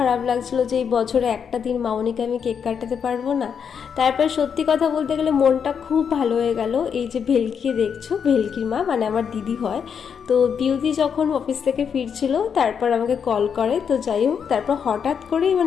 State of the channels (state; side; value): quieter; right; 7.1 dB